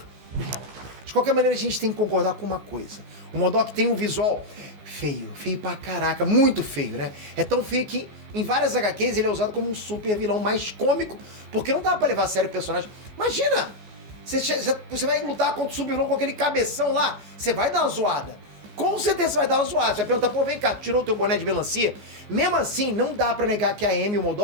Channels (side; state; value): left; late; 15 ms